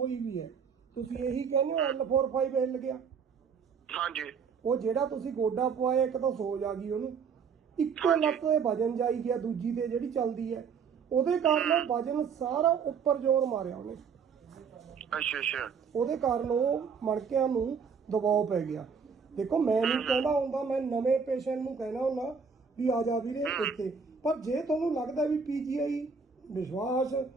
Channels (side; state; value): left; quieter; 6.1 dB